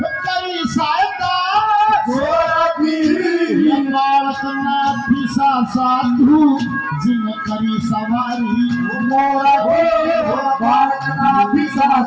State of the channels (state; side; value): identical; both; correlation 1.00